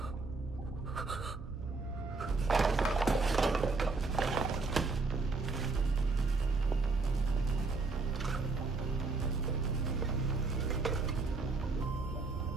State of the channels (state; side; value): quieter; left; 3.8 dB